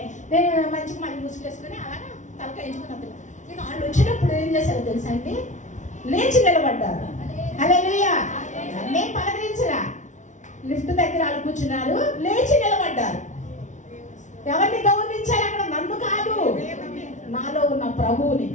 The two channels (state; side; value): late; right; 0.36 ms